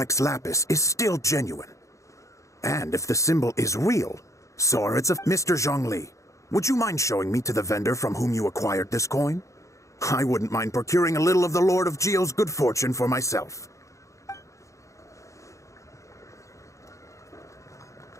Lapis is still genuine. And if the symbol is real, so are its of Mr. Zhongli. Would you mind showing me to the vendor from whom you acquired this coin? I wouldn't mind procuring a little of the Lord of Geo's good fortune for myself.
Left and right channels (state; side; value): late; right; 0.15 ms